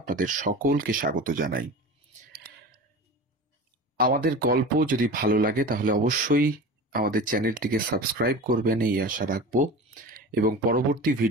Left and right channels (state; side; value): normal; both; correlation 0.33